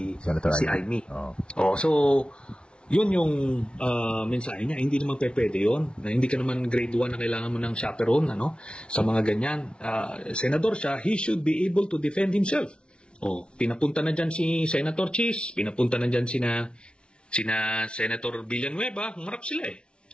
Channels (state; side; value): late; right; 0.057 ms